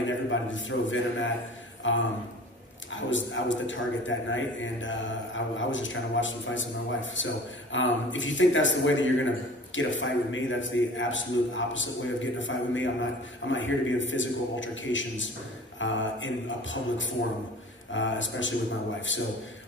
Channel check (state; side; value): normal; both; correlation 0.43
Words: everybody to throw venom at. I was the target that night, and I was just trying to watch some fights with my wife. So if you think that's the way that you're gonna get a fight with me, that's the absolute opposite way of getting a fight with me. I'm not here to be in physical altercations in a public forum, especially with my wife. So